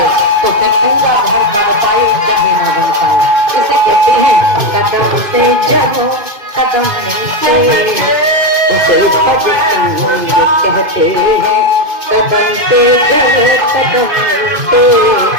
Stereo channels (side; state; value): left; late; 2.5 ms